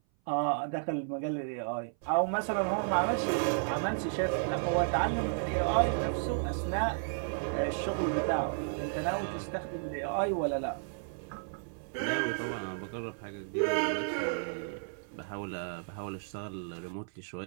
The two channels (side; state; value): left; silent; 56 dB below the other